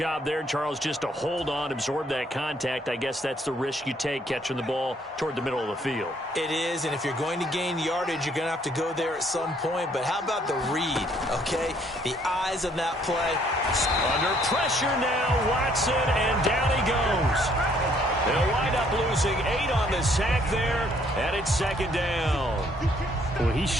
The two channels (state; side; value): normal; both; correlation 0.65